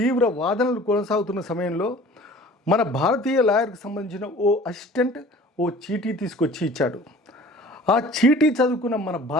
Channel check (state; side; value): normal; both; correlation 0.46